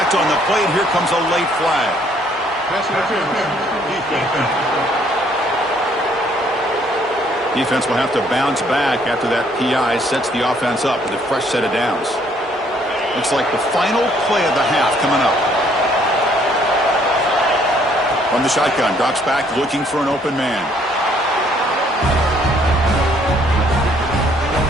on the play, and here comes a late flag. Defense will have to bounce back after that PI sets the offense up with a fresh set of downs. Looks like the final play of the half coming up. From the shotgun, drops back looking for an open man.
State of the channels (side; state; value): both; normal; correlation 0.64